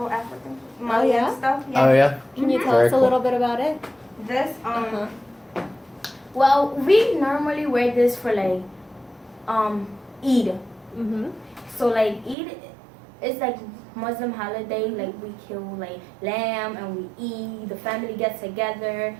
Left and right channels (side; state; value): left; drops out; at 12.4 s